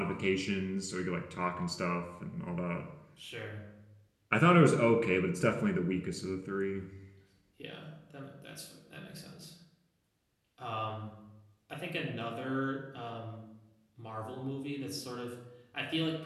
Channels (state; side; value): identical; both; correlation 1.00